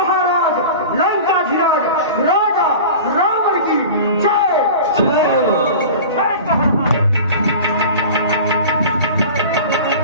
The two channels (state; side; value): inverted; both; correlation -0.36